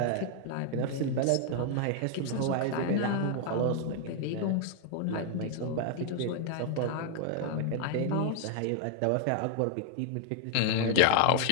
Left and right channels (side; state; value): both; different; correlation 0.00